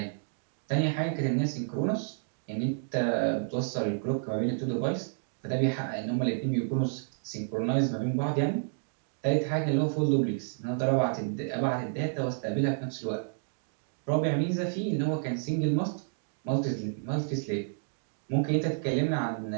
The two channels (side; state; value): left; silent; digital silence